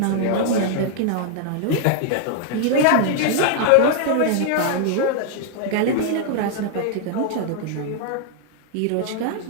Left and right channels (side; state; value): both; different; correlation 0.00